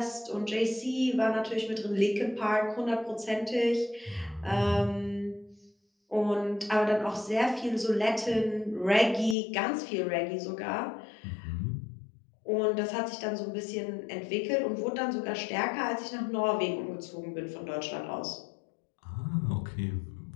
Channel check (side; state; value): right; drops out; at 9.3 s